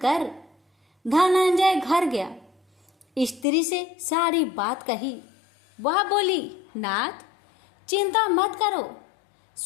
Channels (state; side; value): drops out; right; at 3.5 s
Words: धनंजय घर गया, स्त्री से सारी बात कही। वह बोली, नाथ, चिंता मत करो,